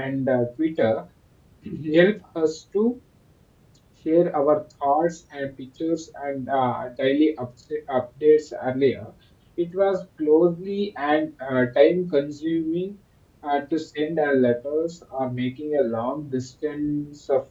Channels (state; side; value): identical; both; correlation 1.00